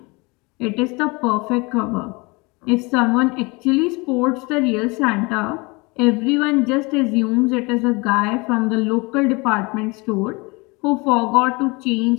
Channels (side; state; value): right; quieter; 26.8 dB